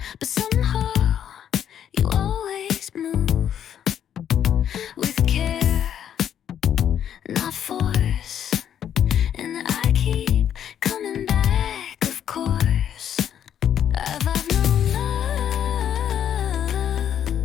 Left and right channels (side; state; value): right; quieter; 9.6 dB